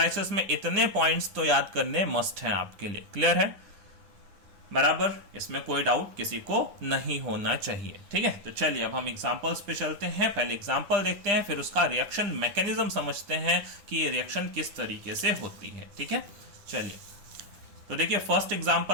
में इतने पॉइंट्स तो याद करने मस्ट हैं आपके लिए। क्लियर है? बराबर, इसमें कोई डाउट किसी को नहीं होना चाहिए। ठीक है, तो चलिए अब हम एग्जांपल्स पे चलते हैं। पहले एग्जांपल देखते हैं, फिर उसका रिएक्शन मैकेनिज्म समझते हैं कि ये रिएक्शन किस तरीके से होती है। ठीक है, चलिए तो देखिए फर्स्ट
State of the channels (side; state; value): left; late; 9.9 ms